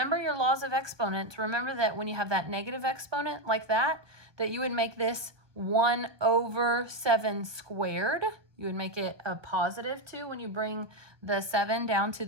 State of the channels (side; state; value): left; late; 1.2 ms